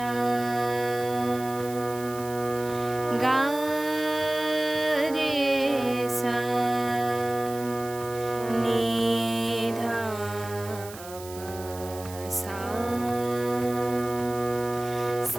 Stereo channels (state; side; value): noise; right; hiss, 16 dB below the sound